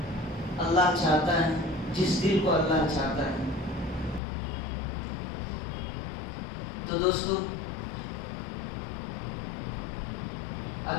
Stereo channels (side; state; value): right; drops out; at 4.2 s